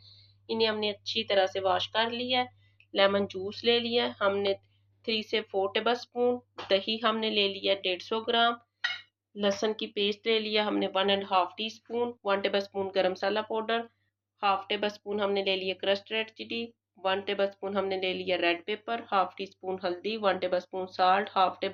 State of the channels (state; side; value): identical; both; correlation 1.00